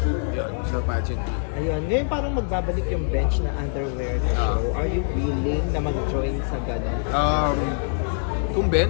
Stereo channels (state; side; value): silent; right; 63 dB below the other